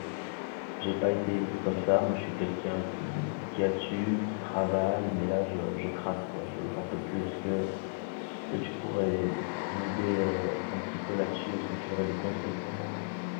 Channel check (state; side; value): silent; right; digital silence